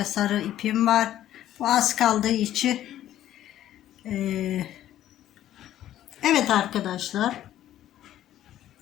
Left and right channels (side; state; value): right; quieter; 12.5 dB